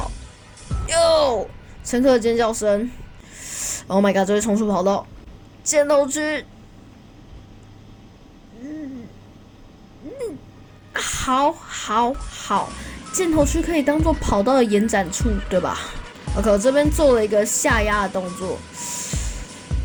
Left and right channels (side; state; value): both; identical; correlation 1.00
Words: 哟，乘客的尖叫声 ！Oh my god， 这会冲出跑道，箭头区。好，箭头区可以当做跑道的延展处，对吧 ？OK， 我这边做了一个下压的动作。